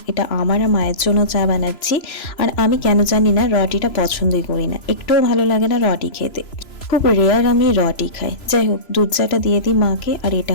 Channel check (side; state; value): right; late; 3.0 ms